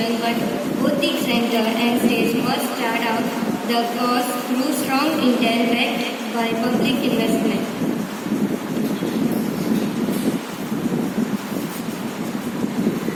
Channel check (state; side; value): identical; both; correlation 1.00